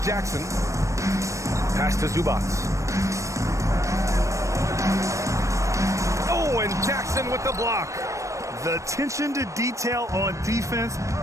Jackson. Pass to Zubats. Oh, and Jackson with the block. The attention to detail on defense.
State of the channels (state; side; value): late; left; 0.15 ms